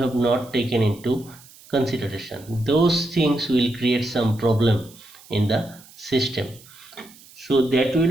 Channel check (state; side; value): noise; right; hiss, 23 dB below the sound